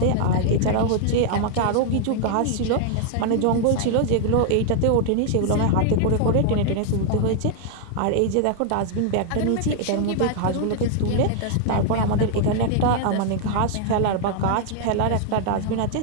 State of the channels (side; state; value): both; different; correlation 0.00